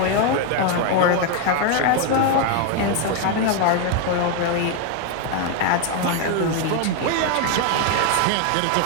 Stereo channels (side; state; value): both; different; correlation 0.01